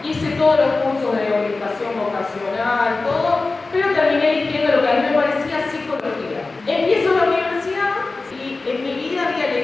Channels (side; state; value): right; quieter; 3.6 dB